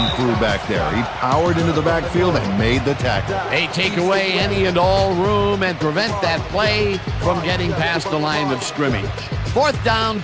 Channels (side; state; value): both; identical; correlation 1.00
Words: crew back there. He powered into the backfield and made the tackle. They take away any and all room and prevent that play from getting past the line of scrimmage. 4th down